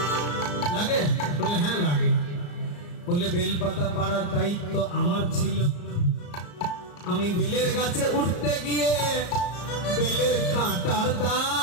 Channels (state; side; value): late; right; 34 ms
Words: লাগে বলে হ্যাঁ লাগে বলে বেলপাতা পাড়ার দায়িত্ব আমার ছিল আমি বেলের গাছে উঠতে গিয়ে বেলের কাঁটার